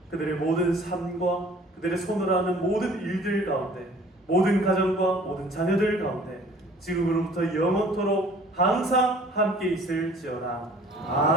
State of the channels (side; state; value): both; normal; correlation 0.52